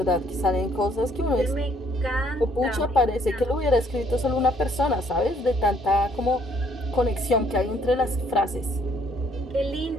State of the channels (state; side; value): normal; both; correlation 0.65